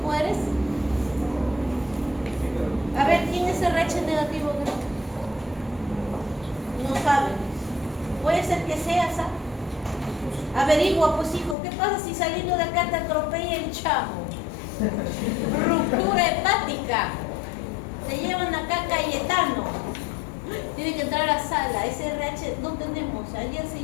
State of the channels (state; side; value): drops out; right; at 11.6 s